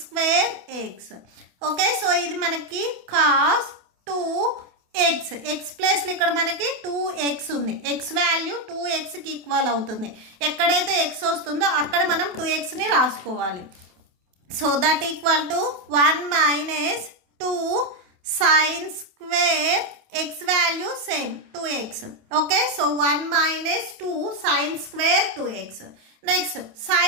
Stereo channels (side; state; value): left; late; 28 ms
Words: square x. Okay, so ఇది మనకి cos 2x, x ప్లస్లో ఇక్కడ మనకి 2x ఉంది, x వాల్యూ 2xకి ఈక్వల్ అవుతుంది. ఎక్కడైతే x వస్తుందో అక్కడ మనం 2xని రాసుకోవాలి. So that equal to 1 minus 2 sine square x value same 2x. Okay, so 1 minus 2 sine square 2x. Next